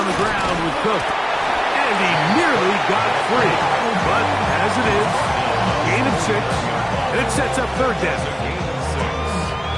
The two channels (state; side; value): identical; both; correlation 1.00